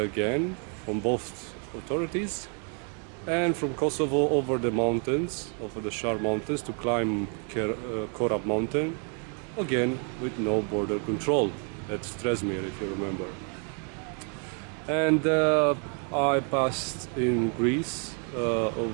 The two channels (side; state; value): left; quieter; 38.7 dB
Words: from both authorities. And from Kosovo over the mountains, over the Shar mountains to climb Korab mountain, again with no border control at Stresmir, if you remember. And I passed in Greece